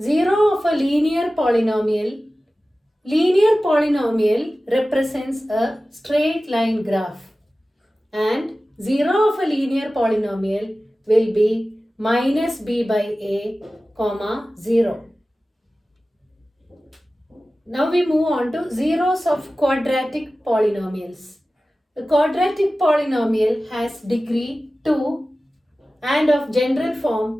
0 of a linear polynomial represents a straight line graph, and 0 of a linear polynomial will be minus b by a, comma 0. Now we move on to zeros of quadratic polynomials. The quadratic polynomial has degree 2 and of general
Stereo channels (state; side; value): normal; both; correlation 0.96